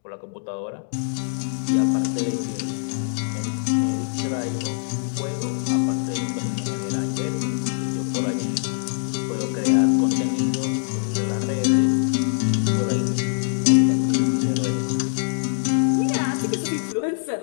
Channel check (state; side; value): silent; right; digital silence